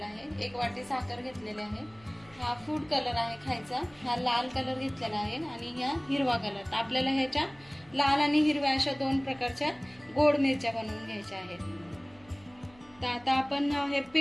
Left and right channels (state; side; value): noise; right; hum, 27 dB below the sound